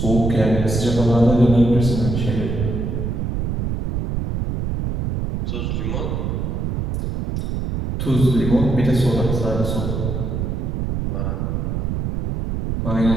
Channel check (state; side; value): noise; right; rumble, 2 dB below the sound